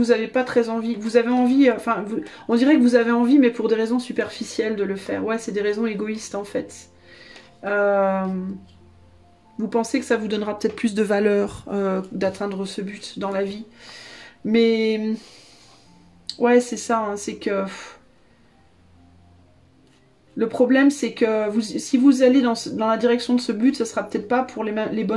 n'avez pas très envie. Vous avez envie, on dirait que vous avez envie, mais pour des raisons superficielles de le faire. Ouais, c'est des raisons égoïstes en fait. Euh, vous pensez que ça vous donnera peut-être plus de valeur d'atteindre ce but dans la vie. Mais ouais, c'est ça, hein, c'est que le problème, c'est que si vous allez dans la direction de ce but, ce sera peut-être pas pour les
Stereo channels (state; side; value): identical; both; correlation 1.00